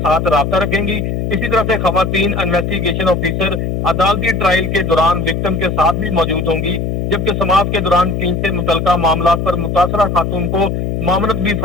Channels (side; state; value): left; noise; hum, 2 dB below the sound